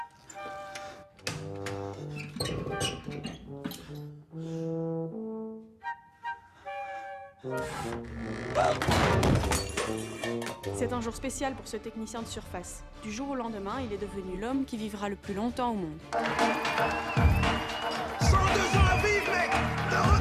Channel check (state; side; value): identical; both; correlation 1.00